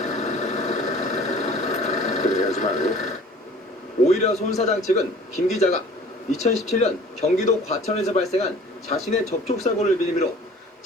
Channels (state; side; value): normal; both; correlation 0.47